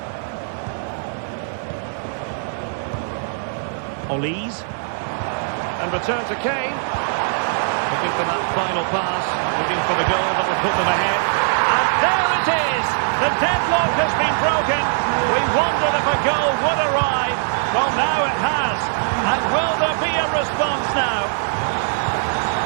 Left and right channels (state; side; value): silent; left; 65 dB below the other